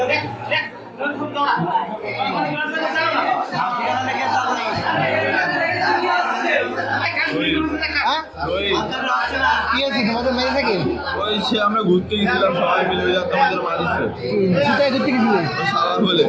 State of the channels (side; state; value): both; identical; correlation 1.00